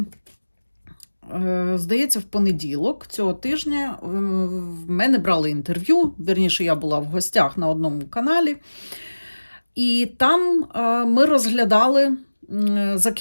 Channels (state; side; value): inverted; both; correlation -1.00